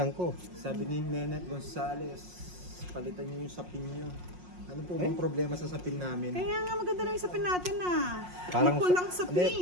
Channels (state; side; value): late; left; 5.5 ms